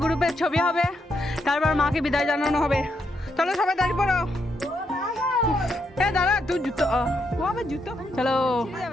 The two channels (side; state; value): both; normal; correlation 0.79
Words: গ্রুপের ছবি হবে, তারপর মাকে বিদায় জানানো হবে। চলো সবাই দাঁড়িয়ে পড়ো। দাঁড়া, তুই জুতো জুতো চলো